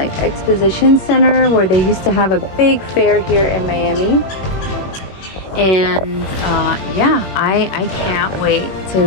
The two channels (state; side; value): late; right; 21 ms